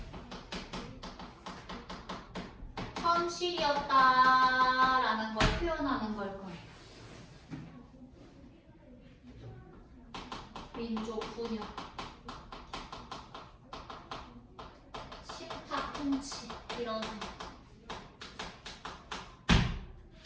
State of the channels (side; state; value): both; identical; correlation 1.00